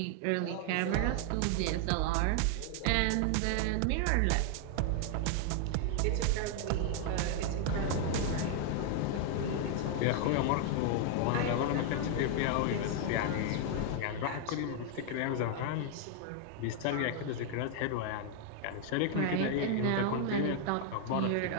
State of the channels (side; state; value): both; different; correlation 0.00